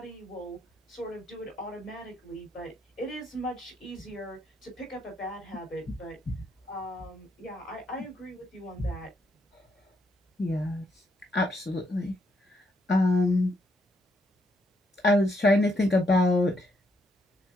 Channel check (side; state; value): both; normal; correlation 0.76